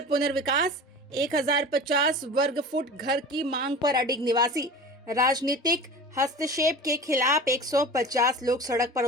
पुनर्विकास 1050 वर्ग फुट घर की मांग पर अडिग निवासी राजनीतिक हस्तक्षेप के खिलाफ 150 लोग सड़क पर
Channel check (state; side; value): normal; both; correlation 0.35